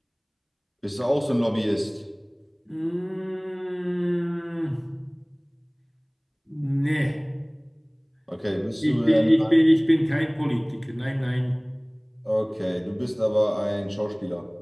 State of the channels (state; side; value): identical; both; correlation 1.00